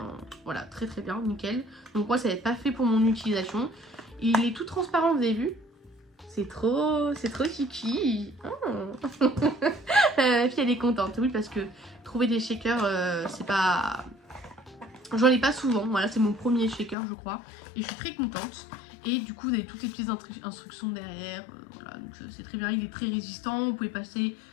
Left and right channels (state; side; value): drops out; right; at 16.9 s